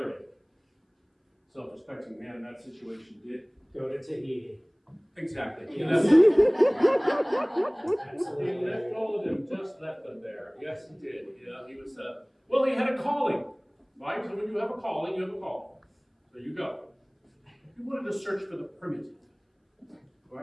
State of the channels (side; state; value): both; identical; correlation 1.00